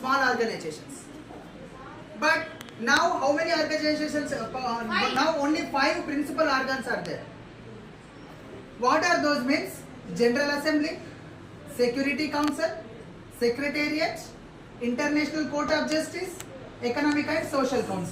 organizations. But now how many organizations? Now only 5 principal organs are there. What are those means? General Assembly, Security Council, Secretariat, International Court of Justice, Economic and Social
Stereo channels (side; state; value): both; identical; correlation 1.00